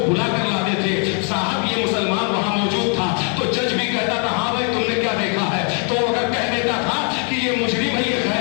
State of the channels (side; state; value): right; quieter; 39.7 dB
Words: بلا کر لاتے تھے, صاحب یہ مسلمان وہاں موجود تھا. تو جج بھی کہتا تھا ہاں بھائی تم نے کیا دیکھا ہے, تو اگر کہہ دیتا تھا کہ یہ مجرم ہے, یہ